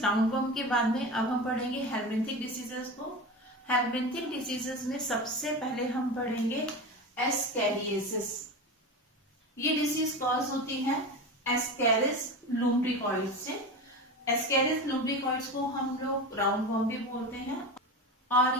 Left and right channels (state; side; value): normal; both; correlation 0.26